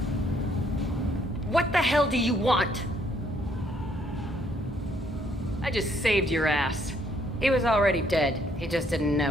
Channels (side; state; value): both; normal; correlation 0.68